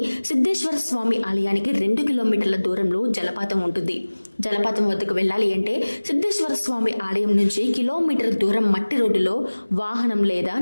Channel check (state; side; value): inverted; both; correlation -1.00